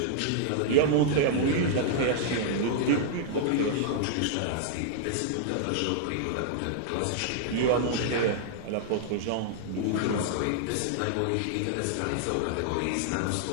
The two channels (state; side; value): different; both; correlation -0.01